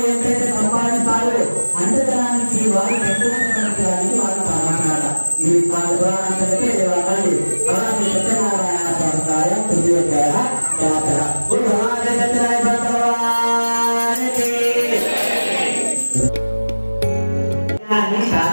ఎంతైతే సంపాదిస్తారో అంత ధనానికి వారు పెట్టుకోవడానికి వారు సామాన్యాల ఇది వాళ్ళ పురాణానికి దేవాలని అలాంటి సత్యనారాయణ సంస్థాయ తృతీయ జాతర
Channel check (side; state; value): both; inverted; correlation -1.00